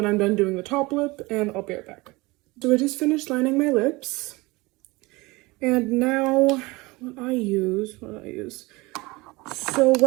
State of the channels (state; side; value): quieter; left; 23.0 dB